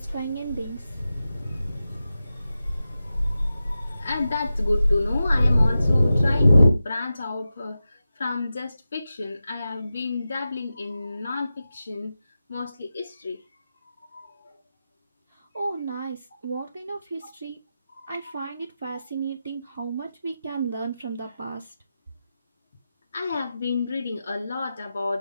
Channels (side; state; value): both; inverted; correlation -0.92